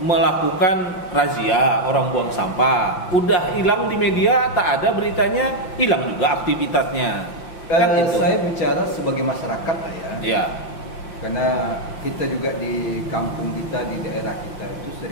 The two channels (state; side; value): late; right; 5.8 ms